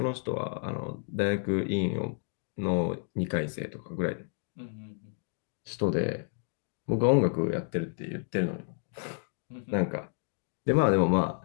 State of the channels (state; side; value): silent; right; 57 dB below the other